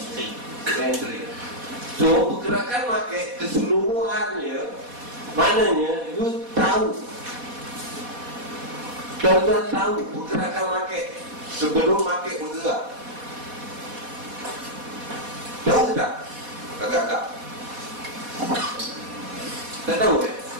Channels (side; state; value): left; late; 4.1 ms